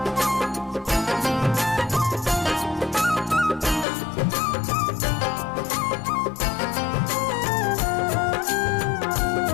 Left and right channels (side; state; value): right; drops out; at 3.9 s